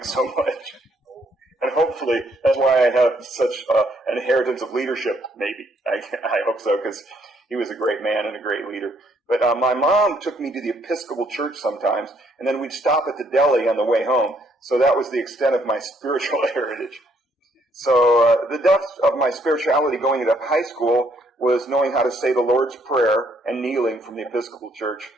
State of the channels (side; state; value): both; normal; correlation 0.69